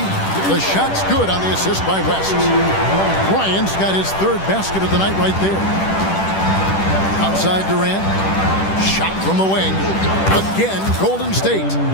the shot's good on the assist by West. Bryant's got his 3rd basket of the night right there. Outside Durant, shot from the wing. Again, Golden State.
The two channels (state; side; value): late; right; 10 ms